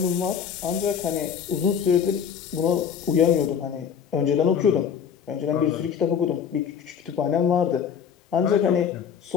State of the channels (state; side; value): quieter; right; 7.5 dB